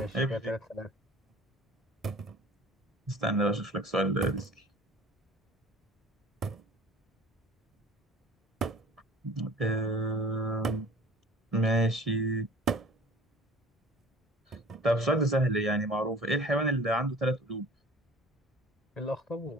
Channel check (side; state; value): both; normal; correlation 0.46